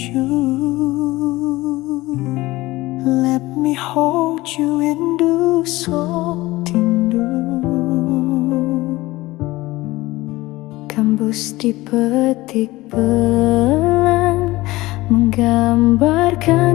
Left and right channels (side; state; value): right; quieter; 19.2 dB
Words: let me hold you rindu sotindu. Gambus dipetik pelan,